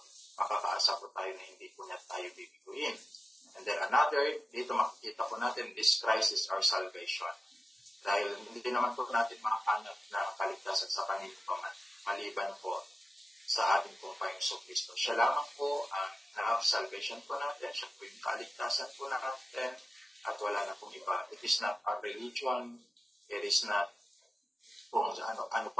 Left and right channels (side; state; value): both; normal; correlation 0.93